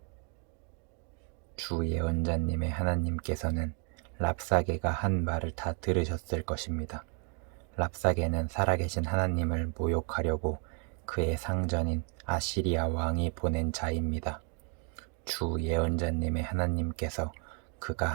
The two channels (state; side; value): quieter; left; 39.8 dB